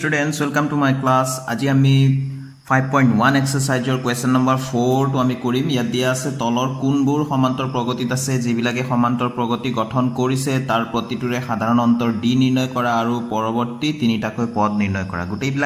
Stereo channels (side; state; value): both; identical; correlation 1.00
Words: welcome to my class. আজি আমি 5.1 exercise question number 4 to আমি কৰিম। ইয়াত দিয়া আছে তলৰ কোনবোৰ সমান্তৰ প্ৰগতিত আছে যিবিলাকে সমান্তৰ প্ৰগতি গঠন কৰিছে তাৰ প্ৰতিটোৰে সাধাৰণ অন্তৰ d নিৰ্ণয় কৰা আৰু পৰৱৰ্তী তিনিটাকৈ পদ নিৰ্ণয় কৰা।